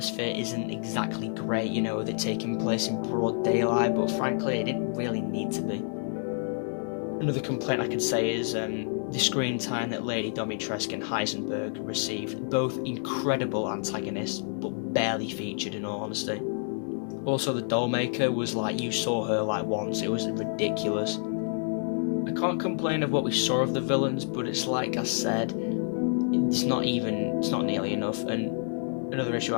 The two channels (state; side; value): silent; right; 59 dB below the other